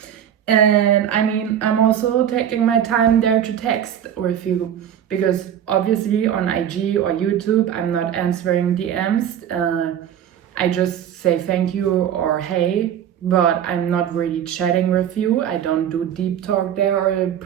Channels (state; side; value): quieter; left; 9.7 dB